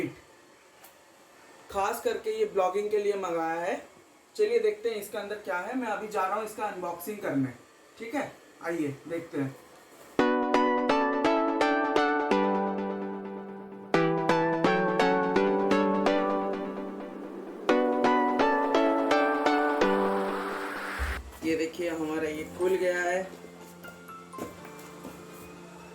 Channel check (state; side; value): identical; both; correlation 1.00